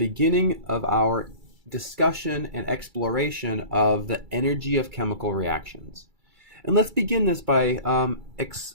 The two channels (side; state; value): left; late; 2.3 ms